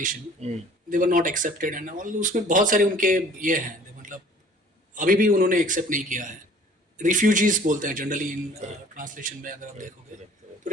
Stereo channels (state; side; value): normal; both; correlation 0.51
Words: they were not accepted and all, उसमें बहुत सारे उनके ये हैं, मतलब अभी भी उन्होंने एक्सेप्ट नहीं किया है। रिफ्यूजीज बोलते हैं जनरली इन ट्रांसलेशन में, अगर आप देखोगे तो